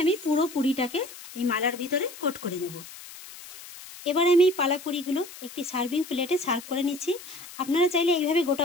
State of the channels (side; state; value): left; noise; hiss, 16 dB below the sound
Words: আমি পুরো পুরিটাকে এই মালার ভিতরে কোট করে নেব। এবার আমি এই পালা পুরিগুলো একটি সার্ভিং প্লেটে সার্ভ করে নিচ্ছি। আপনারা চাইলে এইভাবে গোটা